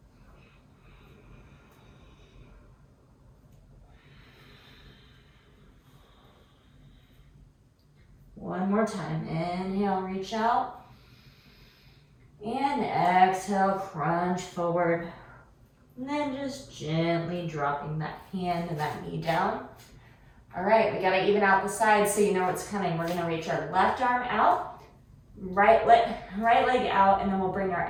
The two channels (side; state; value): both; identical; correlation 1.00